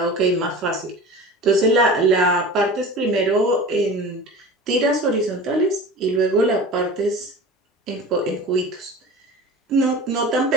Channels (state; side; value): normal; both; correlation 0.35